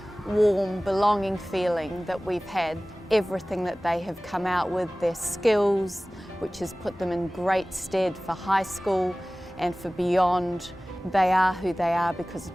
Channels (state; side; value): normal; both; correlation 0.98